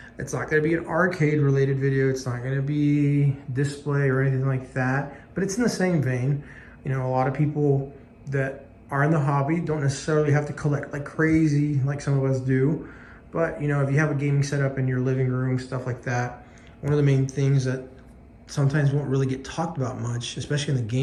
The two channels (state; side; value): identical; both; correlation 1.00